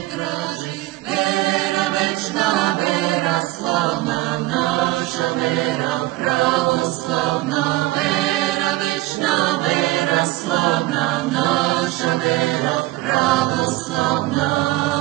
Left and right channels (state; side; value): quieter; left; 18.6 dB